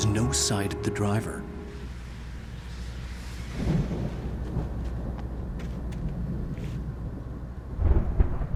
no sight of the driver.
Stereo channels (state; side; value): identical; both; correlation 1.00